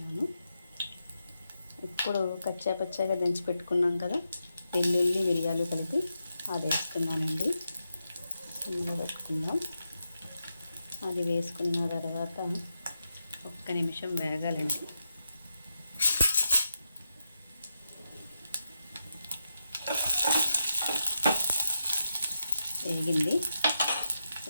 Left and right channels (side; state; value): both; inverted; correlation -0.87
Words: ఇప్పుడు కచ్చాపచ్చాగా దంచి పెట్టుకున్నాం కదా వెల్లుల్లి, మిరియాలు కలిపి అది వేస్తున్నానండి. ఇందులో పెట్టుకుందాం. అది వేసుకున్న తర్వాత 1 నిమిషం వేగాలండి. వేగింది.